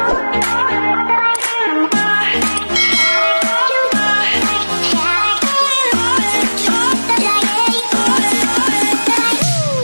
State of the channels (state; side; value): inverted; both; correlation -1.00